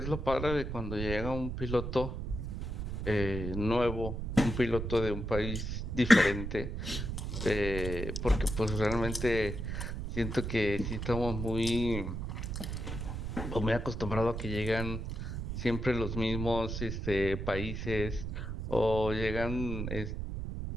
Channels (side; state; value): right; noise; rumble, 4 dB below the sound